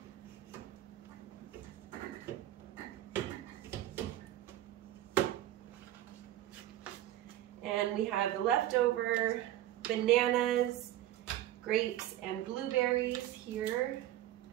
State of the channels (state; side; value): quieter; left; 13.7 dB